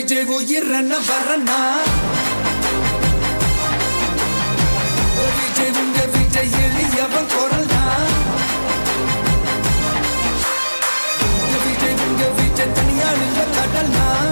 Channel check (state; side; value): inverted; both; correlation -1.00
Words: விஜய் உயிரன வரனா விஜய் உங்க விஜய் எளியவன் குரல்னா விஜய் உங்க விஜய் தனியால் இல்ல கடல்னா